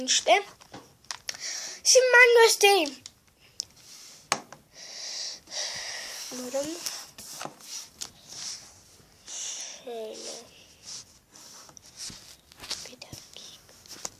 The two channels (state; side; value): identical; both; correlation 1.00